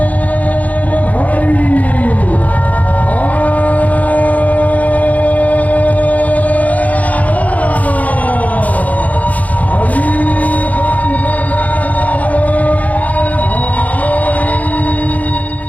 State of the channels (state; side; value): late; right; 0.074 ms